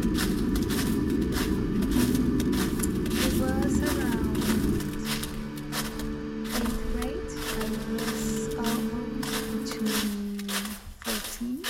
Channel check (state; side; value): identical; both; correlation 1.00